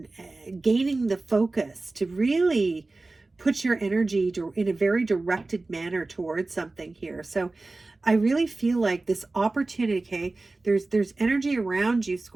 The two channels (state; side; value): quieter; left; 3.3 dB